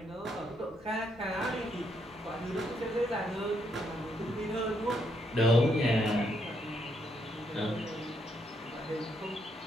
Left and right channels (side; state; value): both; normal; correlation 0.76